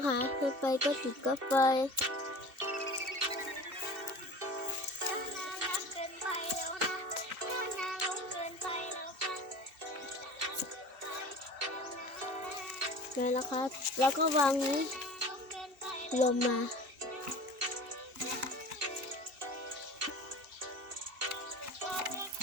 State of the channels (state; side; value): late; left; 2.7 ms